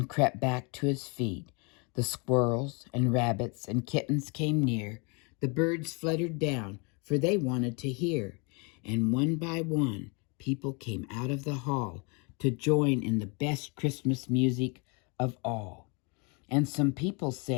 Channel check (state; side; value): quieter; right; 32.3 dB